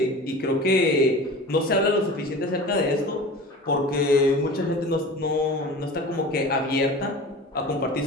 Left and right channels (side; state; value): both; normal; correlation 0.36